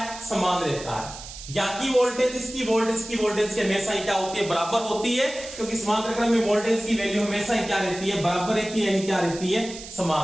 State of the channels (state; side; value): noise; right; hiss, 13 dB below the sound